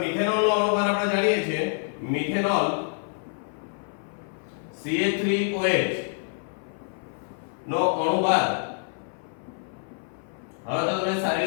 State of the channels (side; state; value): right; silent; 57 dB below the other